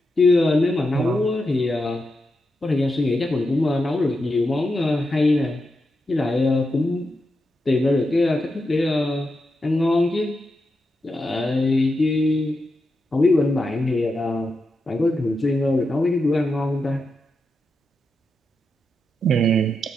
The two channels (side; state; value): both; normal; correlation 0.87